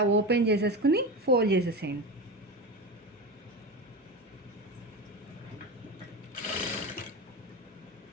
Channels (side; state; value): both; normal; correlation 0.24